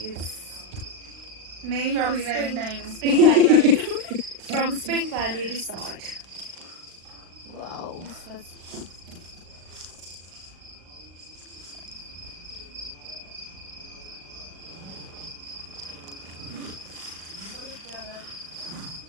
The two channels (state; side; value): late; left; 36 ms